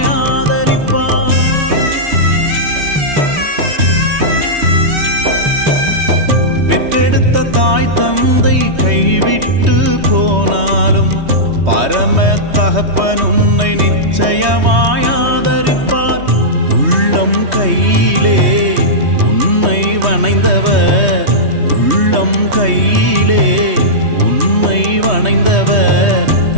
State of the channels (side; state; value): left; late; 3.2 ms